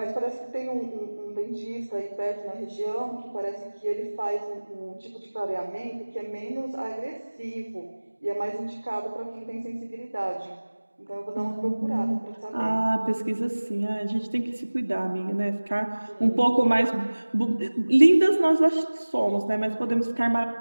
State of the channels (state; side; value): inverted; both; correlation -1.00